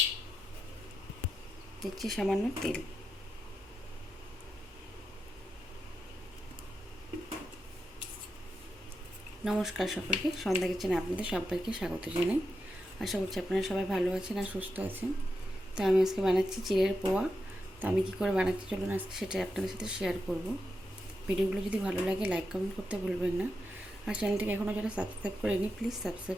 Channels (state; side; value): normal; both; correlation 0.87